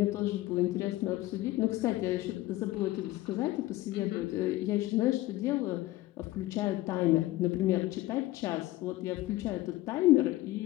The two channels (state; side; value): quieter; right; 17.3 dB